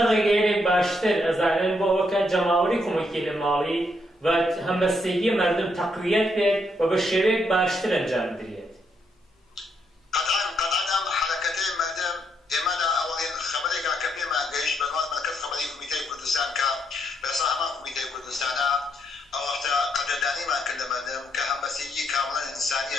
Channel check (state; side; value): normal; both; correlation 0.76